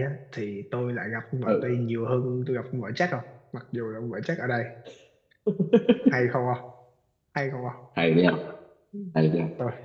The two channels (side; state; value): both; identical; correlation 1.00